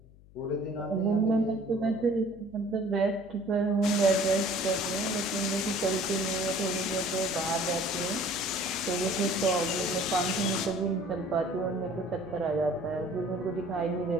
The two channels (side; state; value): left; noise; hum, 24 dB below the sound